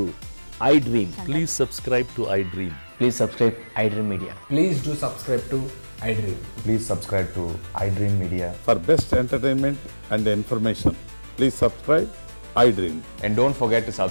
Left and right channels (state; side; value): inverted; both; correlation -1.00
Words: iDream. Please subscribe to iDream. Please subscribe iDream Media. Please do subscribe to iDream. Please subscribe to iDream Media. For best entertainment and information please subscribe iDream. And don't forget to